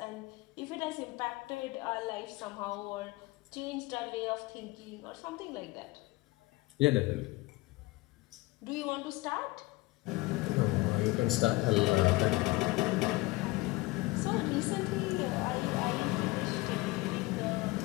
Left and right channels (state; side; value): quieter; right; 21.3 dB